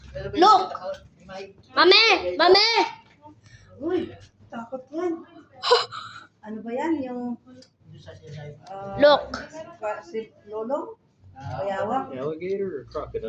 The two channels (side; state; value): both; identical; correlation 1.00